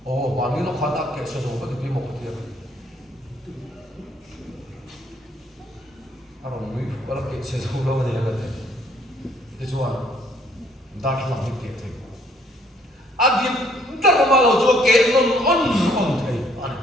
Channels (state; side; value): normal; both; correlation 0.64